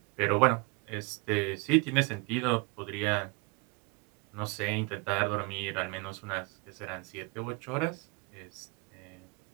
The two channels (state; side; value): quieter; left; 29.1 dB